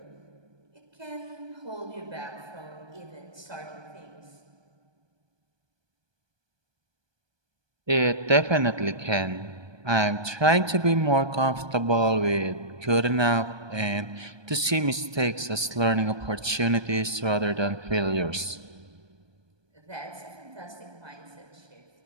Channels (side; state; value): left; late; 1.2 ms